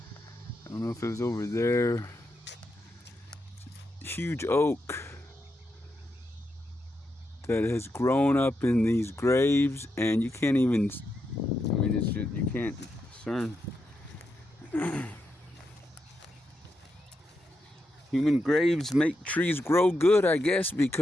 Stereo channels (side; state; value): both; normal; correlation 0.84